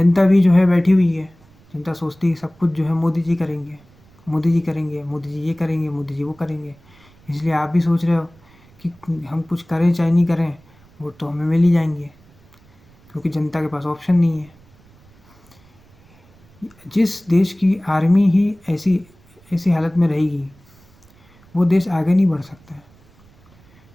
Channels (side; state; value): right; noise; rumble, 28 dB below the sound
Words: भी जो है बैठी हुई है, जनता सोचती है सब कुछ जो है मोदी जी करेंगे, मोदी जी करेंगे, मोदी जी ये करेंगे, मोदी जी वो करेंगे। इसलिए आप भी सोच रहे हो कि हम कुछ करें चाहे नहीं करें, वोट तो हमें मिल ही जाएंगे, क्योंकि जनता के पास ऑप्शन नहीं है। जिस देश की आर्मी ही ऐसी हालत में रहेगी, वो देश आगे नहीं बढ़ सकता है,